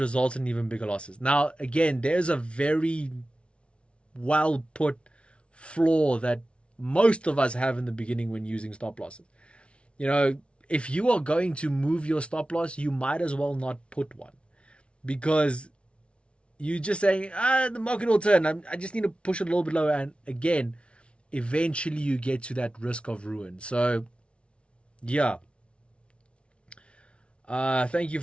in even bigger losses. Now, again, there's a very well put flaw that most of us have in the beginning when using stop losses. If you are going to move your stop loss, you might as well not put one, because you're just saying, the market will turn. I just need to push it a little bit lower. And again, eventually you get to that risk of ruin. So, yeah. Thank you,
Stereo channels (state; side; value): late; right; 0.060 ms